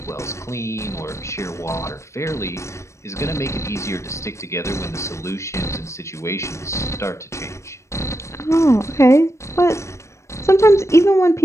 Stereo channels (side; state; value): right; late; 0.14 ms